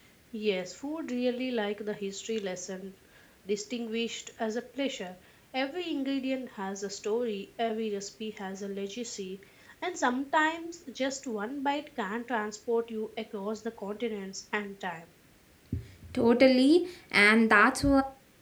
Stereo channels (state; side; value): identical; both; correlation 1.00